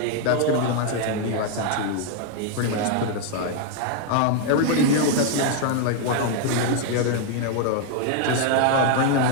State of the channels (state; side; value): different; both; correlation 0.00